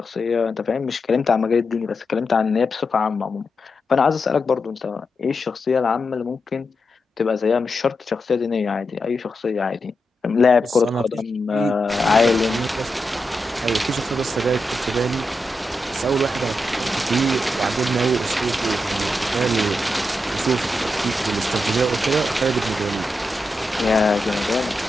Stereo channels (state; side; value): normal; both; correlation 0.87